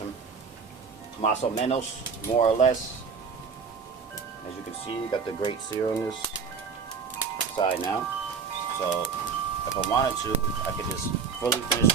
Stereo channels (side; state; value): left; quieter; 5.8 dB